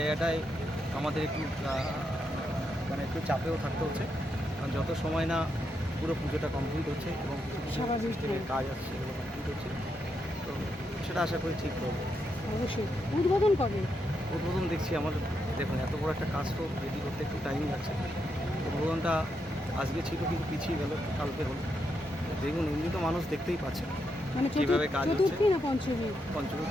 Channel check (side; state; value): both; normal; correlation 0.82